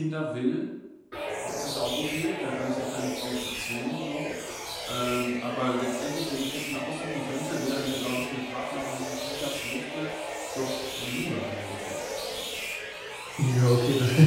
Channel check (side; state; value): both; identical; correlation 1.00